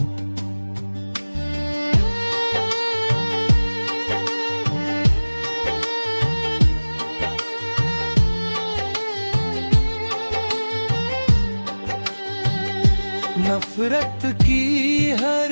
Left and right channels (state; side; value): inverted; both; correlation -1.00